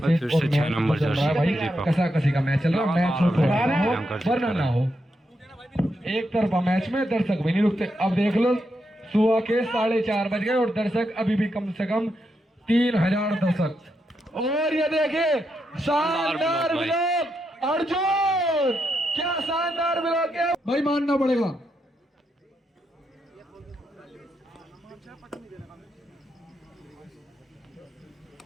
फिर से 6 नंबर भाई कसा कसी का मैच चल रहा है। मैच वरना ना हो एक तरफा मैच में दर्शक भी नहीं रुकते। अब देख लो सुबह के 4:30 बज गए और दर्शक अभी भी कम से कम 3000 दर्शक। और ये देखिए शानदार ब्लॉक अर्जुन, क्या शानदार ब्लॉक है भाई, मानना पड़ेगा।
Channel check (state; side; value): normal; both; correlation 0.83